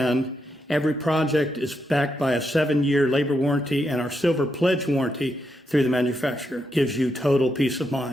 Every project is backed by a 7-year labor warranty, and our Silver Pledge warranty through the manufacturer gives you total peace of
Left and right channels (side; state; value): both; normal; correlation 0.82